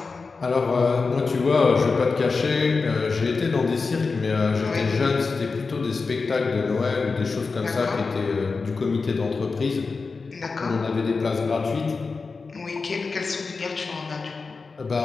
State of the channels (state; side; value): quieter; right; 4.4 dB